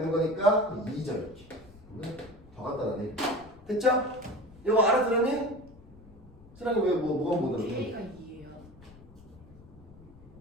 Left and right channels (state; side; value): noise; left; rumble, 22 dB below the sound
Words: 거니까 2죠 이렇게. 더 간단하네. 됐죠? 이거 알아들었니? 사랑이 왜 뭐가 못 알아들어? K가 2예요.